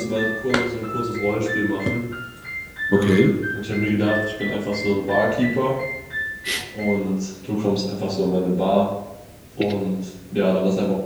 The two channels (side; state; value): both; identical; correlation 1.00